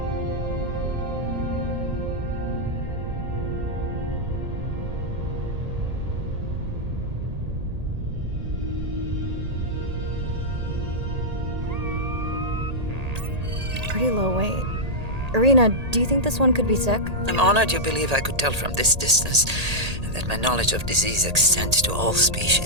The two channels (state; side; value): late; left; 1.8 ms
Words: Pretty low weight. Irina, do you think this one could be sick? I'm honored you believe I could tell from this distance that my knowledge of disease extends to all